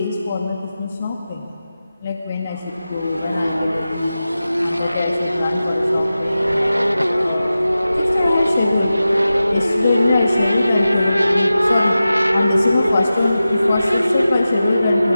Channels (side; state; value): both; inverted; correlation -0.94